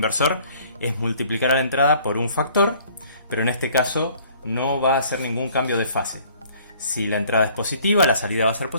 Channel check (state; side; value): inverted; both; correlation -0.56